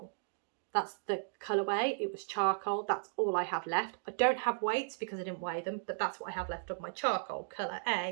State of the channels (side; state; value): left; silent; digital silence